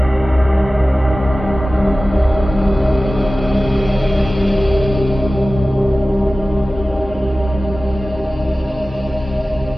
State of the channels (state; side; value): normal; both; correlation 0.96